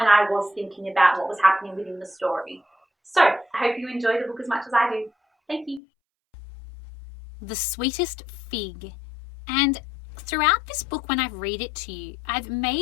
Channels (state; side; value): drops out; right; at 5.8 s